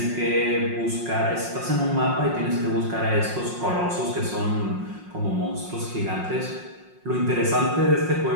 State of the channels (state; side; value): late; left; 5.6 ms